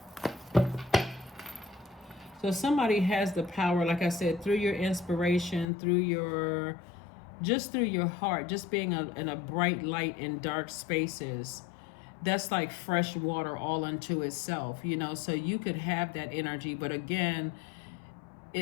So somebody has the power, like I said, through your inspiration, through your heart, just being in a bright light in dark spaces. That's like fresh water all unto itself, you know, so you could have that energy. But again,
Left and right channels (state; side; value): drops out; right; at 5.7 s